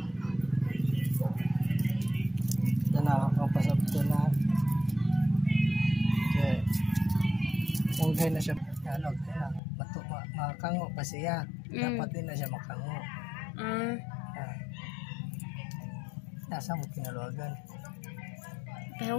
Ito na, kapasap ito na. Okay. Ungay na siya. Makango pa siya. Dapat din na siya makango. Nasa mo kinaluagan.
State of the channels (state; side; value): drops out; right; at 9.6 s